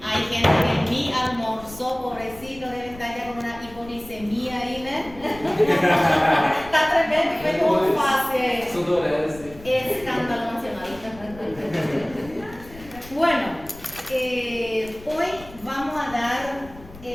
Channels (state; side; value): noise; left; rumble, 19 dB below the sound